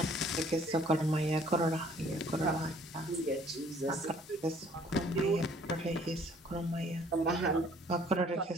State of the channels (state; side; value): normal; both; correlation 0.58